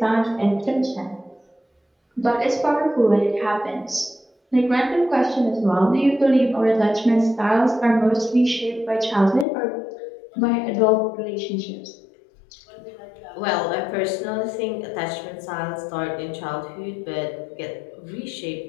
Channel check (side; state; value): right; drops out; at 9.5 s